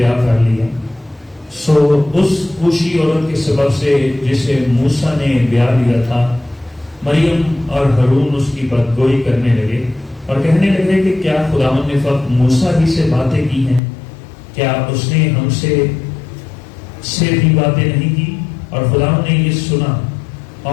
کر لیا. سو اس کوشی عورت کے سبب سے جسے موسیٰ نے بیاہ لیا تھا, مریم اور ہارون اس کی بدگوئی کرنے لگے اور کہنے لگے کہ کیا خداوند نے فقط موسیٰ ہی سے باتیں کی ہیں, کیا اس نے ہم سے بھی باتیں نہیں کی؟ اور خداوند نے یہ سنا,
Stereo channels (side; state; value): right; drops out; at 13.8 s